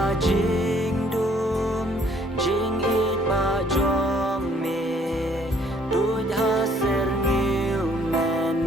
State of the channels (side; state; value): both; normal; correlation 0.62